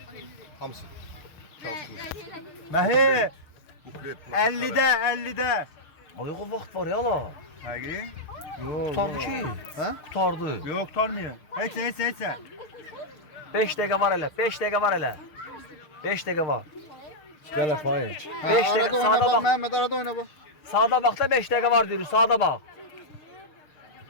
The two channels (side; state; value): right; late; 6.5 ms